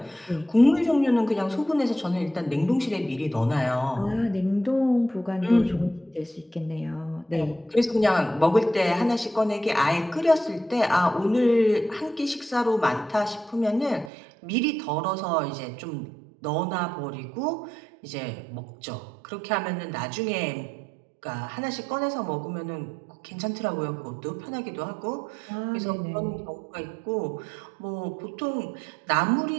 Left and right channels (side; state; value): left; drops out; at 14.1 s